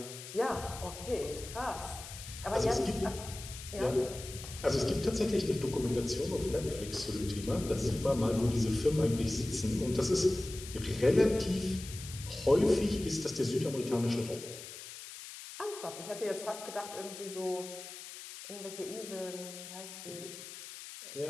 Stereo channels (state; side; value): noise; left; hiss, 12 dB below the sound